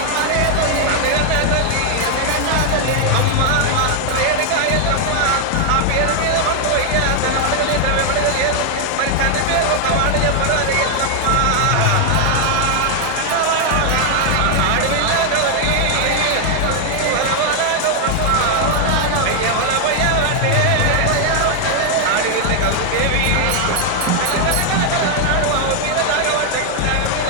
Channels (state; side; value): different; both; correlation 0.00